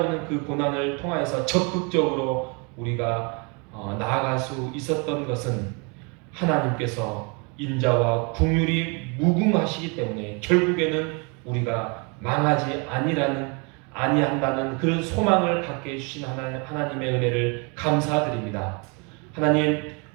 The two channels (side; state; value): left; quieter; 32.7 dB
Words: 그 고난을 통하여서 적극적으로 우리가 나아갈 수 있었던 것은 하나님께서 인자와 긍휼이 무궁하시기 때문에 결국에는 우리가 망하지 아니한다는 그런 소망을 갖게 해주신 하나님의 은혜를 감사드립니다. 하나님,